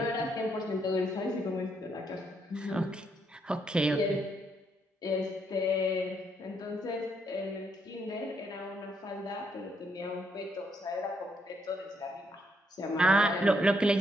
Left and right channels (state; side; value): normal; both; correlation 0.75